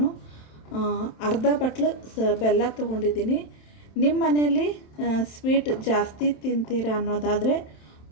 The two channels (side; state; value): right; late; 27 ms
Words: ಅರ್ಧ ಬಟ್ಲು ಬೆಲ್ಲ ತೊಗೊಂಡಿದ್ದೀನಿ. ನಿಮ್ಮ ಮನೆಯಲ್ಲಿ ಸ್ವೀಟ್ ಜಾಸ್ತಿ ತಿಂತೀರ ಅನ್ನೋದಾದರೆ